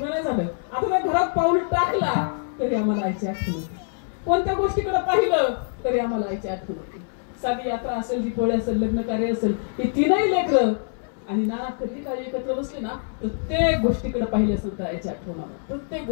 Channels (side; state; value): right; silent; 61 dB below the other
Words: नाही झालं. आता त्या घरात पाऊल टाकला तरी आम्हाला आईची आठवण होती. कोणत्या गोष्टीकडे पाहिलं तरी आम्हाला आईची आठवण होती. साधी यात्रा असेल, दीपावली असेल, लग्न कार्य असेल, ही 3ही लेकरं आणि नाना कधी काही एकत्र बसले ना प्रत्येक गोष्टीकडे पाहिले असेल तर आईची आठवण आलं. प्रत्येक